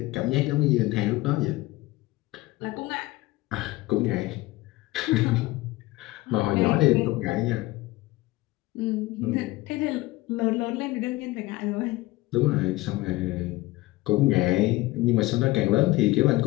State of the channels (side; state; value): right; quieter; 19.5 dB